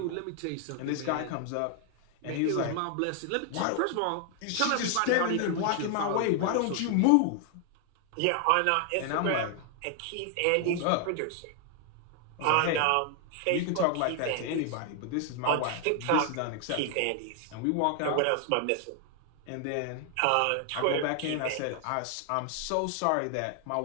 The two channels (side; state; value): both; different; correlation 0.00